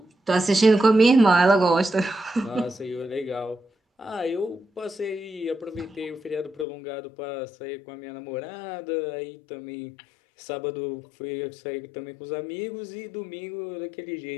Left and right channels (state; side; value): drops out; right; at 6.7 s